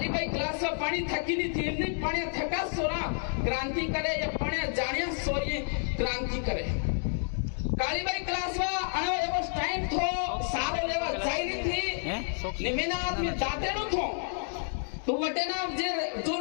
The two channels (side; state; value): right; silent; 58 dB below the other